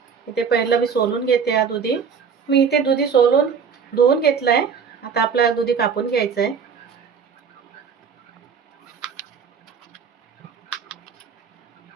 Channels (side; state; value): left; quieter; 6.4 dB